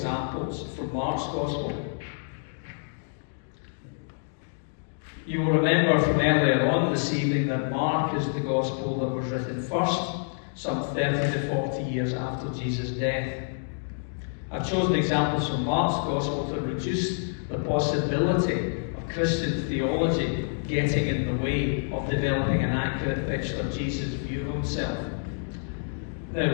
from Mark's Gospel. You will remember from earlier on this evening that Mark is the Gospel that was written first, some 30 to 40 years after Jesus' death. I've chosen examples from Mark's Gospel to reduce the possibility of Christian theology getting in the way of developing an accurate picture of Jesus' view of himself.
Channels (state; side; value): silent; right; digital silence